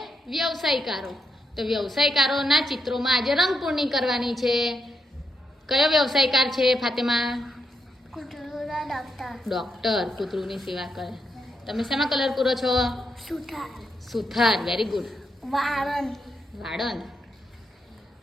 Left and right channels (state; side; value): normal; both; correlation 0.82